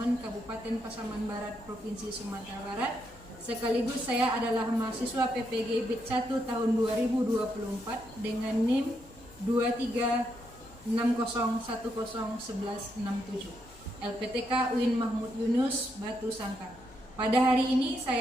Kabupaten Pasaman Barat, Provinsi Sumatera Barat. Sekaligus saya adalah mahasiswa PPG BIT 1 tahun 2024 dengan NIM 2360101167. LPTK UIN Mahmud Yunus, Batu Sangkar. Pada hari ini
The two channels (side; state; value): left; noise; hum, 24 dB below the sound